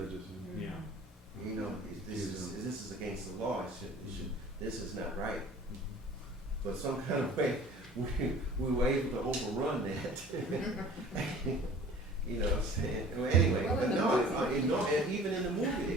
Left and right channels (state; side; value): normal; both; correlation 0.46